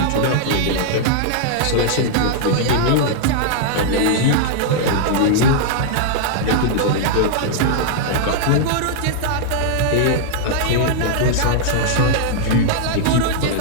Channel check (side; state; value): both; different; correlation -0.01